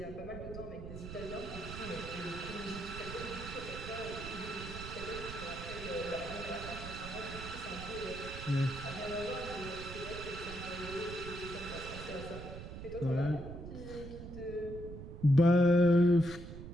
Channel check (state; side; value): noise; right; rumble, 10 dB below the sound